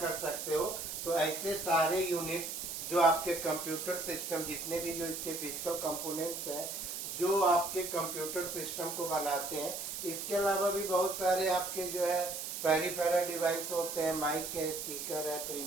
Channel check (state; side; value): noise; right; hiss, 5 dB below the sound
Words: सकते हो। तो ऐसे सारे यूनिट्स जो आपके कंप्यूटर सिस्टम, जितने भी जो इसके फिजिकल कंपोनेंट्स हैं जो आपके कंप्यूटर सिस्टम को बनाते हैं, इसके अलावा भी बहुत सारे आपके जो है पेरिफेरल डिवाइस होते हैं, माइक है, स्पीकर है,